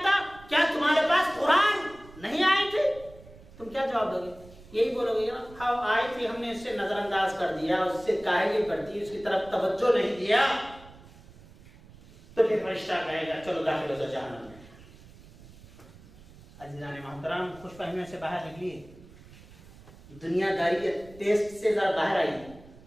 था? क्या तुम्हारे पास कुरान नहीं आए थे? तुम क्या जवाब दोगे? यही बोलोगे ना, हाँ आए थे, हमने इससे नजरअंदाज कर दिया, उससे काहिली कर दी, उसकी तरफ तवज्जो नहीं दिया, तो फिर फरिश्ता कहेगा चलो दाखिल हो जाओ जहन्नम में। अजीजान मोहतरम, खुश फहमियों से बाहर निकलिए, दुनियादारी के टेस्ट से जरा बाहर आइए,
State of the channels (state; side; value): noise; right; rumble, 21 dB below the sound